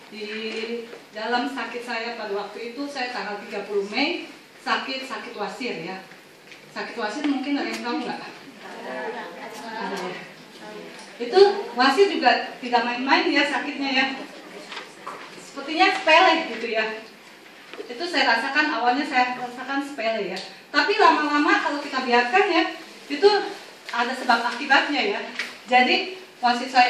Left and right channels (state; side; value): identical; both; correlation 1.00